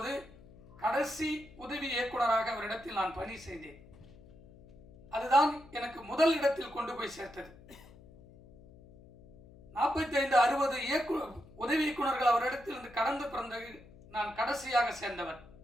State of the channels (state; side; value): noise; left; hum, 22 dB below the sound